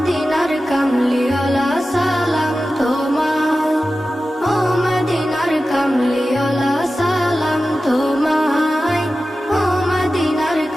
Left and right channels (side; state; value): both; normal; correlation 0.94